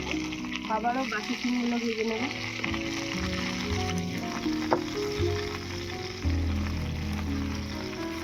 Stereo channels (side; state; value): both; identical; correlation 1.00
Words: আবারও বাকি সিমগুলো ভেজে নেব।